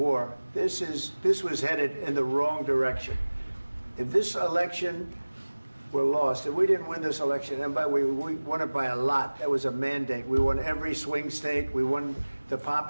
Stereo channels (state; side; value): inverted; both; correlation -1.00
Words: This was headed in the wrong direction. If this election were lost, if we didn't win this election, and we won it by a lot, that was a mandate. We won every swing state. We won the